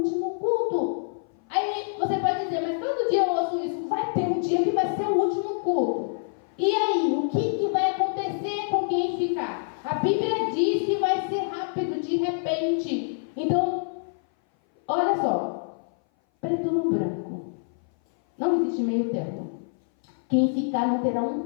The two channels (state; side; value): silent; right; 58 dB below the other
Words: culto. Aí você pode dizer, mas todo dia eu ouço isso. Vai ter um dia que vai ser o último culto. E aí, o que vai acontecer com quem ficar? A Bíblia diz que vai ser rápido, de repente. Então, olha só. Preto no branco. Não existe meio termo. Quem ficar não terá